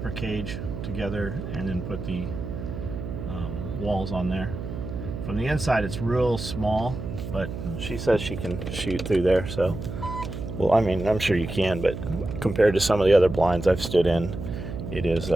cage together and then put the walls on there. From the inside it's real small, but she says she can shoot through there. So, well, I mean, I'm sure you can, but compared to some of the other blinds I've stood in, it is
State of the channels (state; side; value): noise; right; hum, 7 dB below the sound